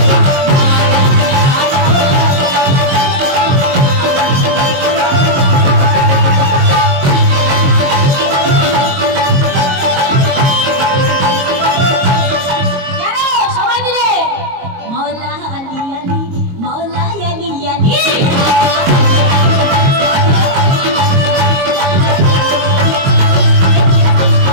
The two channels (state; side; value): late; left; 22 ms